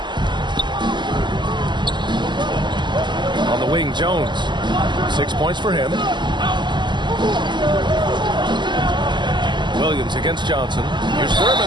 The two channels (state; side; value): late; left; 0.22 ms